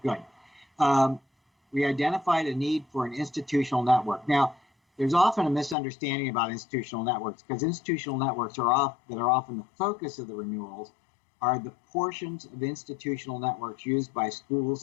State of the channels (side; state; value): right; drops out; at 5.8 s